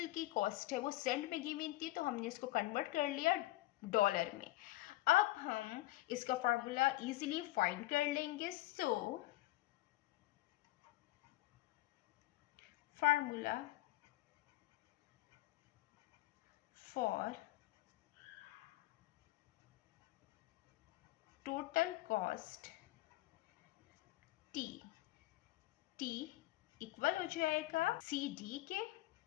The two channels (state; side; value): quieter; right; 17.9 dB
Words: की कॉस्ट है वो सेंट में गिवन थी। तो हमने इसको कन्वर्ट कर लिया डॉलर में। अब हम इसका फार्मूला इजीली फाइंड कर लेंगे। So formula for total cost T equal हो जाएगा CD के